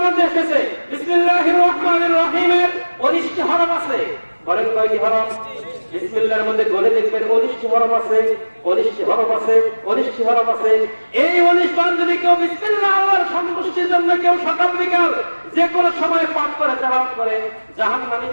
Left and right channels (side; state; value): both; inverted; correlation -1.00